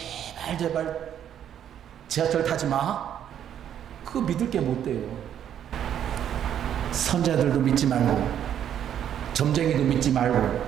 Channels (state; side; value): quieter; left; 9.8 dB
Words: 지하철 타지 마. 그거 믿을 게 못 돼요. 선자들도 믿지 말고 점쟁이도 믿지 말고